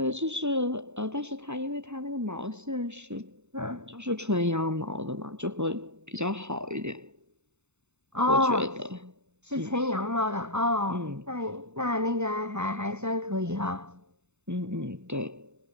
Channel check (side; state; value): left; late; 0.82 ms